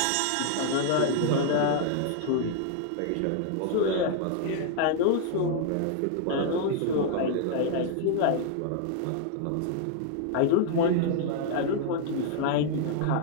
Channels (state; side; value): different; both; correlation 0.00